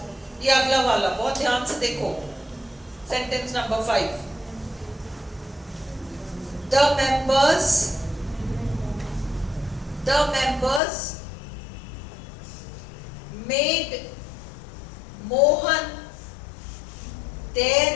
ये अगला वाला बहुत ध्यान से देखो, sentence number 5, the members made Mohan their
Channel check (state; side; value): drops out; right; at 10.8 s